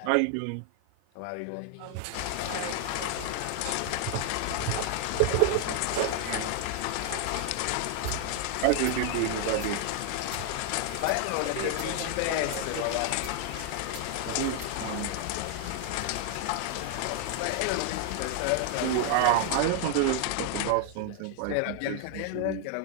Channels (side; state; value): both; different; correlation 0.00